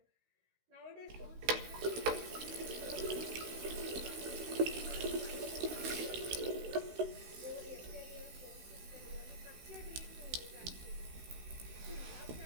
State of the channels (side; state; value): left; late; 16 ms